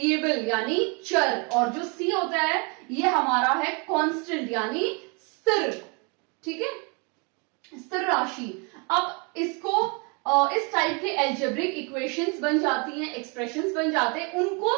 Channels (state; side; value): quieter; left; 33.2 dB